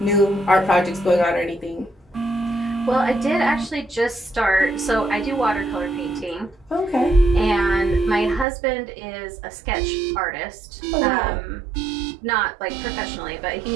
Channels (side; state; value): left; drops out; at 8.5 s